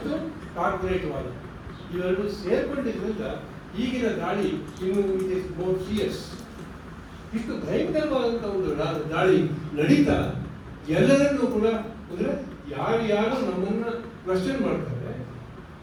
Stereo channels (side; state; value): both; identical; correlation 1.00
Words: ಕಾರ್ಪೊರೇಟ್ವಾದ ಇವೆರಡು ಸೇರ್ಕೊಂಡಿದ್ದರಿಂದ ಈಗಿನ ದಾಳಿ ಇನ್ನು ಇಟ್ ಇಸ್ ಮೋರ್ ಫಿಯರ್ಸ್. ಇಷ್ಟು ಭಯಂಕರವಾದಂಥ ಒಂದು ದಾಳಿ ನಡೀತಾ ಎಲ್ಲರನ್ನೂ ಕೂಡ ಅಂದರೆ ಯಾರು ನಮ್ಮನ್ನ ಕ್ವಶನ್ ಮಾಡ್ತಾರೆ,